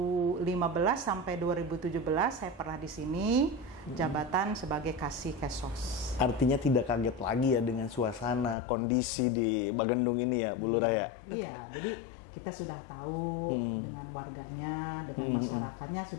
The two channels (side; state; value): right; drops out; at 8.6 s